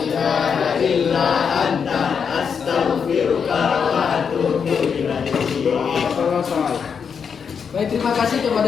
ilaha illa anta astaghfiruka wa atubu ilaik. Baik, terima kasih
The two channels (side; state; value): right; quieter; 6.6 dB